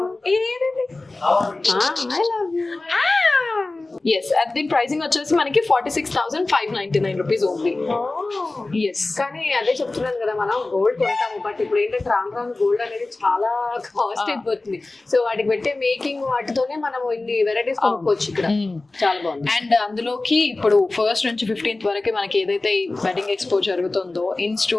I love you. Yes అది దీని ప్రైసింగ్ వచ్చేసి మనకి 46,599 రూపీస్ ఓన్లీ. ఎస్ కానీ అదే చెప్తున్నాను కదా, మనం గోల్డ్ కొంటాము బట్ ఇప్పుడు ఏంటంటే రాను రాను గోల్డ్ అనేది చాలా కాస్ట్ అయిపోతుంది. సో వాటికి పెట్టే మేకింగ్ వాటితోనే మనం ఇన్ని వెరైటీస్ కొనుక్కోవచ్చు ఇక్కడ. చాలా బాగుంది. అండ్ అందులోకి ఇప్పుడు 1st నుంచి 15th వరకు మనకి ఏదైతే ఈ వెడ్డింగ్ ఎక్స్పో జరుగుతుందో in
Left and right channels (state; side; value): quieter; right; 3.2 dB